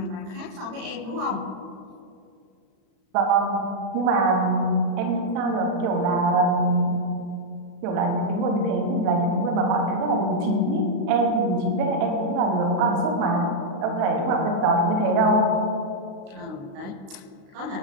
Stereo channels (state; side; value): late; left; 36 ms